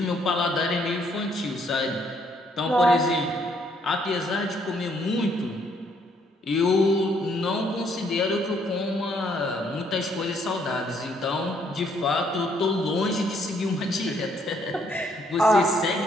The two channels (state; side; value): normal; both; correlation 0.68